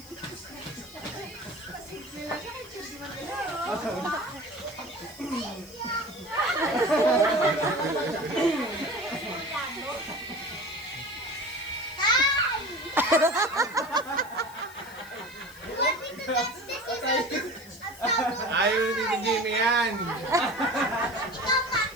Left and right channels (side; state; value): left; noise; hiss, 21 dB below the sound